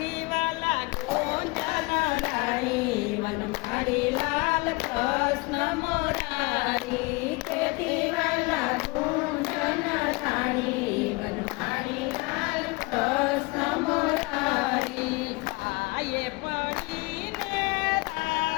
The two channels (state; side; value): quieter; right; 25.7 dB